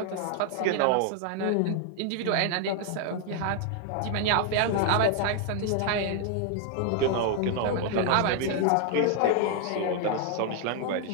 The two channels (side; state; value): both; different; correlation 0.00